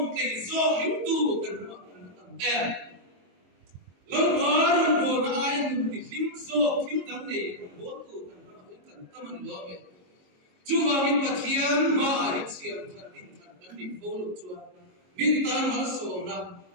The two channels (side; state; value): left; late; 22 ms